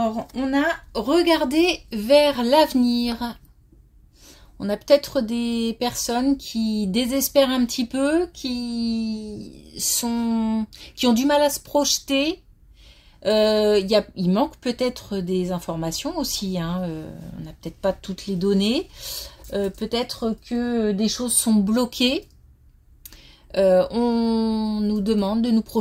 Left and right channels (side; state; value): both; identical; correlation 1.00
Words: on a regardé vers l'avenir. On a peut-être des personnes qui désespèrent un petit peu, qui ont du mal à se projeter. Il manque peut-être des informations aussi. On n'a peut-être pas toutes les données. Peut-être que des choses sont bloquées. On nous demande de nous